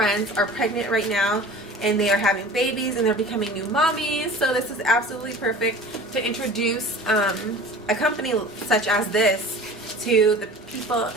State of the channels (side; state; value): both; normal; correlation 0.40